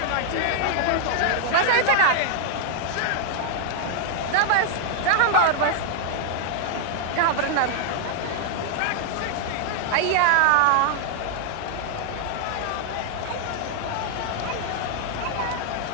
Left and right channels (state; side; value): different; both; correlation 0.00